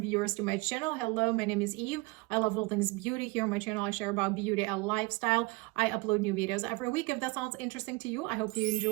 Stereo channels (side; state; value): left; quieter; 24.5 dB